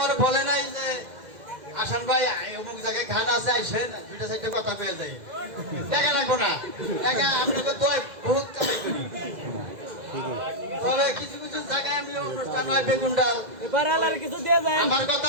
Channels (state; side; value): late; left; 2.0 ms